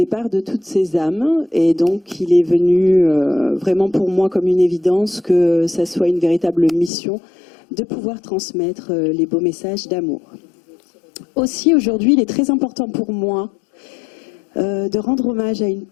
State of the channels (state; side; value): drops out; right; at 6.9 s